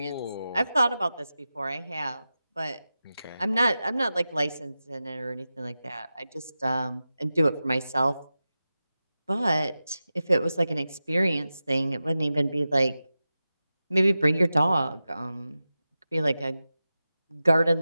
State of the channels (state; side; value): inverted; both; correlation -0.93